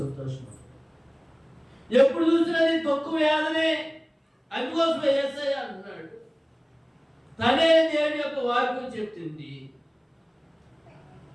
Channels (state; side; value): identical; both; correlation 1.00